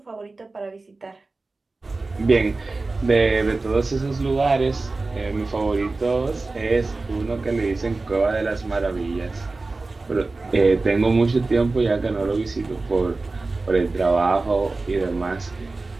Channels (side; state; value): left; quieter; 3.5 dB